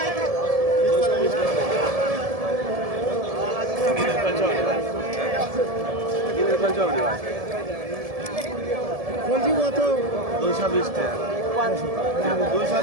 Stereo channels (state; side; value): late; left; 1.7 ms